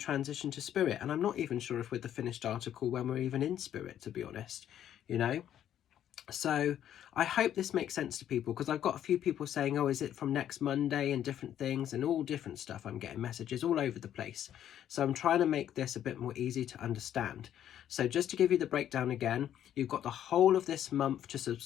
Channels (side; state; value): right; quieter; 10.7 dB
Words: to spirit. And I'm not even sure if we're the finished article when we're even in spirit, to be honest, you know. So I hope this makes sense to people, because I've got a few people saying, oh, is it from next Monday, and different things and all different stuff. I'm getting messages all over the place. So I'm trying to make this a bit more easy to understand. So just to give you the breakdown again, you've got the whole of this month to